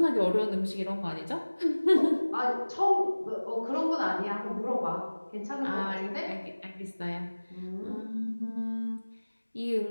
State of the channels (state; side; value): inverted; both; correlation -1.00